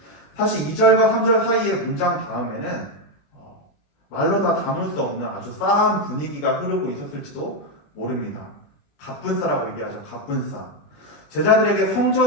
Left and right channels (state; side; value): late; right; 21 ms